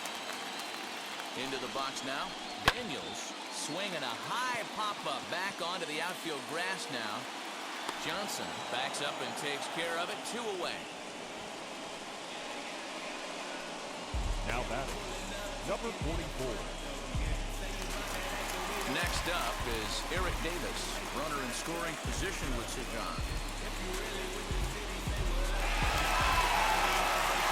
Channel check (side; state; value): both; identical; correlation 1.00